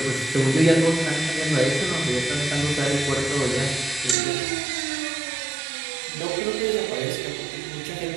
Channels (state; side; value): drops out; left; at 4.2 s